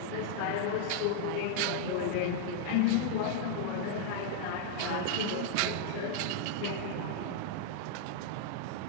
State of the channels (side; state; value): both; different; correlation -0.01